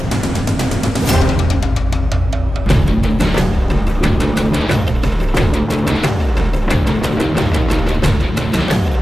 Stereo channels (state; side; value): normal; both; correlation 0.93